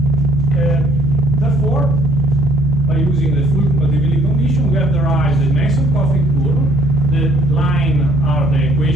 Therefore, by using the full compatibility condition, we have derived the Mason-Corfick curve. The line are the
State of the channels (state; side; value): normal; both; correlation 0.62